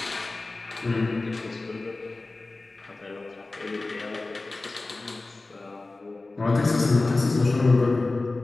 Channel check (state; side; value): quieter; right; 3.2 dB